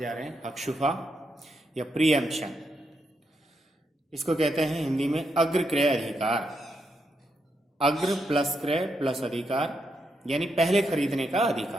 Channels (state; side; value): normal; both; correlation 0.82